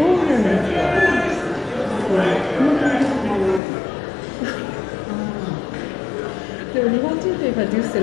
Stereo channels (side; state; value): right; drops out; at 3.6 s